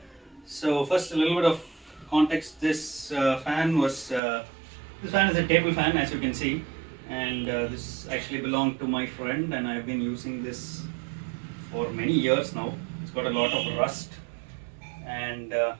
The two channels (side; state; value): left; drops out; at 4.2 s